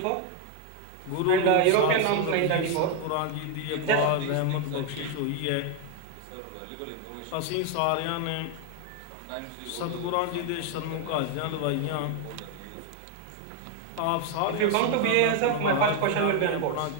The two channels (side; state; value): both; different; correlation 0.01